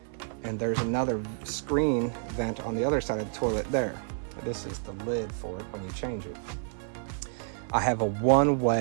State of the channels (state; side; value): silent; left; digital silence